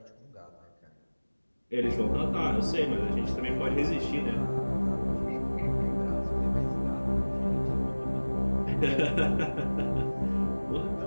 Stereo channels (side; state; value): both; inverted; correlation -1.00